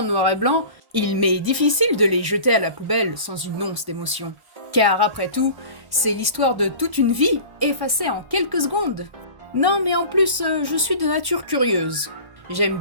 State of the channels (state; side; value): late; left; 1.1 ms